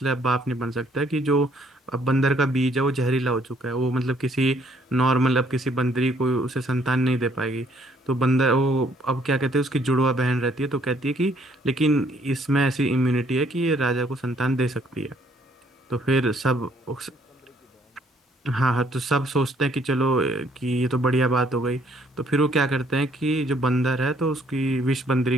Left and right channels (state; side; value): normal; both; correlation 0.65